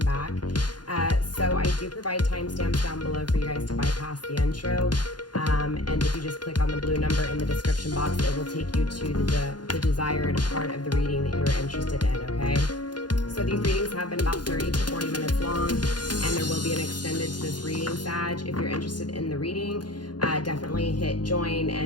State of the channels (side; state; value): right; late; 0.70 ms